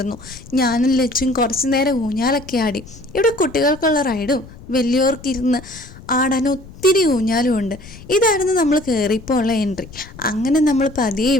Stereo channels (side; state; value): left; noise; rumble, 18 dB below the sound